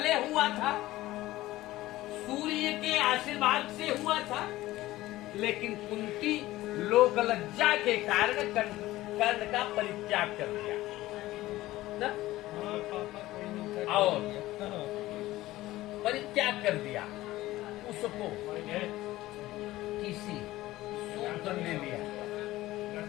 हुआ था, सूर्य के आशीर्वाद से हुआ था, लेकिन कुंती लोक लज्जा के कारण कर्ण का परित्याग कर दिया ना? और परित्याग कर दिया, उसको किसी सूत्र ने लिया,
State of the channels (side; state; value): right; quieter; 16.8 dB